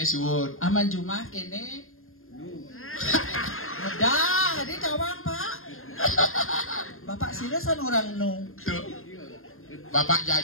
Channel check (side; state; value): right; late; 0.61 ms